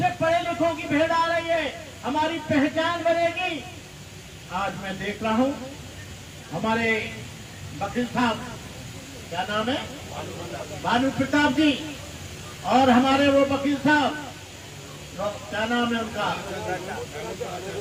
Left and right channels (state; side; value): identical; both; correlation 1.00